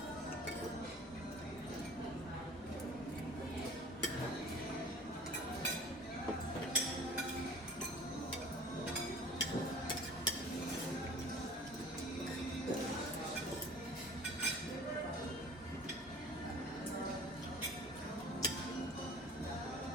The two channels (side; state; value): both; normal; correlation 0.45